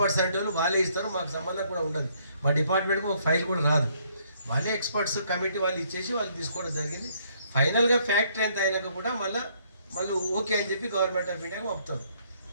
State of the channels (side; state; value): both; inverted; correlation -0.67